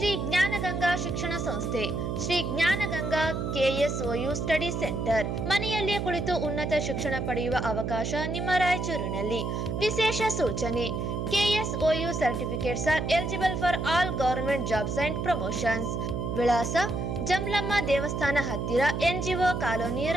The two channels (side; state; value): right; noise; hum, 2 dB below the sound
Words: ಜ್ಞಾನಗಂಗಾ ಶಿಕ್ಷಣ ಸಂಸ್ಥೆ, Shri Jnanaganga KSOU study centre. ಮನೆಯಲ್ಲಿಯೇ ಕುಳಿತು ಉನ್ನತ ಶಿಕ್ಷಣ ಪಡೆಯುವ ಅವಕಾಶ ನಿಮ್ಮ ರಾಯಚೂರಿನಲ್ಲಿ. ವಿಶೇಷ ಸೂಚನೆ: KSOU certificates are eligible for all government jobs and promotions. ವಿಳಾಸ: ಜಮಲಮ್ಮ ದೇವಸ್ಥಾನ ಹತ್ತಿರ, NGO ಕಾಲೋನಿ,